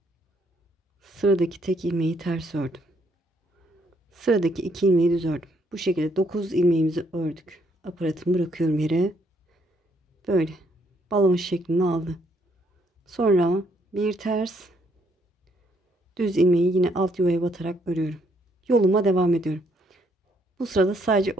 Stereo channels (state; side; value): normal; both; correlation 0.70